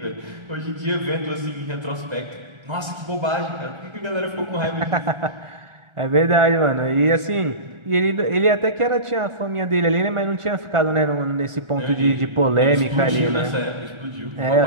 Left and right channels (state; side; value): late; left; 1.4 ms